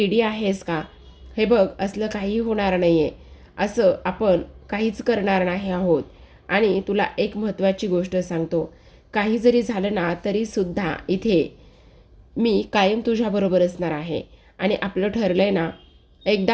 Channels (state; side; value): identical; both; correlation 1.00